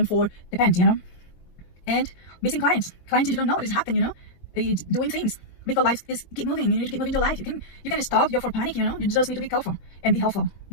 4, depends, you know. And missing clients you don't know what is happening, you know, doing things because life is keep moving. You need to keep moving your life. You can stop. You're for panic, you know. You just need to be careful and be helpful,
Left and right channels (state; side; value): late; right; 22 ms